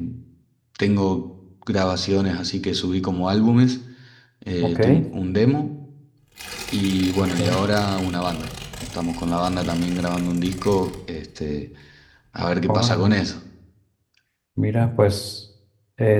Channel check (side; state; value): both; identical; correlation 1.00